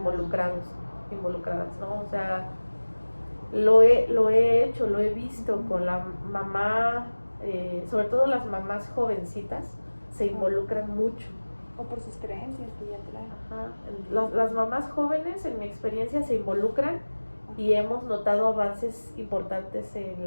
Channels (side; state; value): both; inverted; correlation -1.00